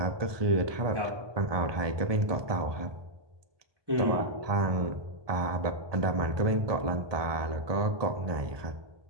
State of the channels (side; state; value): left; late; 1.2 ms